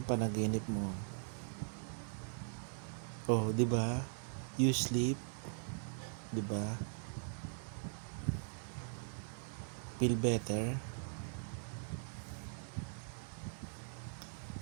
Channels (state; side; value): silent; left; digital silence